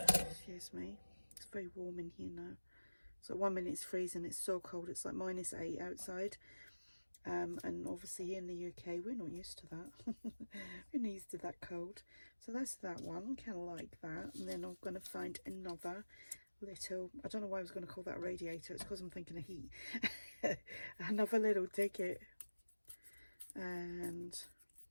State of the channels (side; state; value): both; inverted; correlation -1.00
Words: Excuse me. It's very warm in here now. So 1 minute it's freezing, it's so cold, it's like -8 outside. And obviously here in the UK we're not used to that. We're not used to that cold. So that's that one, kind of like that. And then I'm going to find another little, I don't know why I was going to call that a radiator, it's because I'm thinking of heat. Another little ticket. And